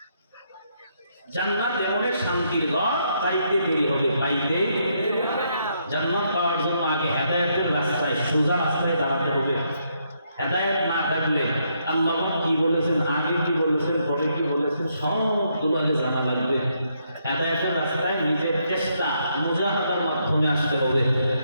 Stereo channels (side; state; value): both; inverted; correlation -0.76